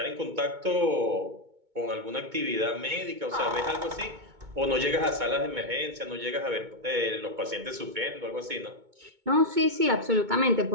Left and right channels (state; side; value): late; left; 2.2 ms